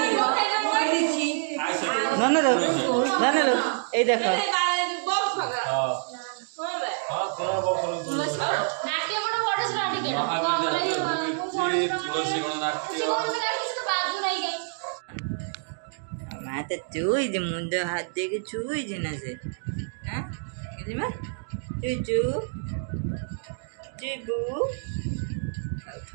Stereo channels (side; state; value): left; silent; digital silence